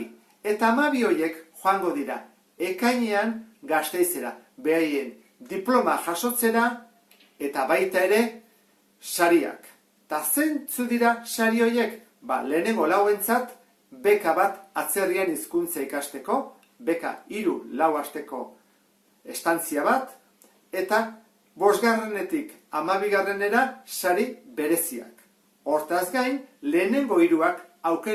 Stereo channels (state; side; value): identical; both; correlation 1.00